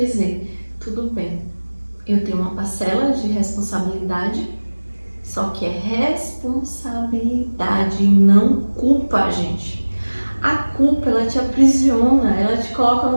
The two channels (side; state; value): both; inverted; correlation -1.00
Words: tudo bem, eu tenho uma parcela de responsabilidade, só que é responsabilidade, não culpa, gente. A culpa, ela te aprisiona, ela te coloca